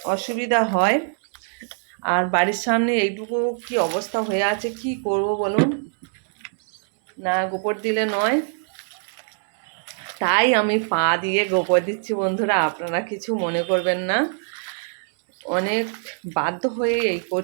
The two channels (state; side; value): silent; left; 63 dB below the other